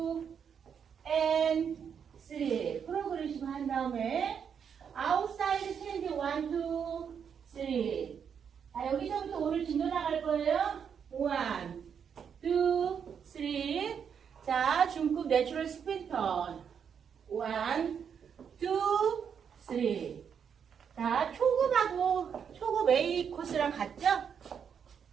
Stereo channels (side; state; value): left; quieter; 7.4 dB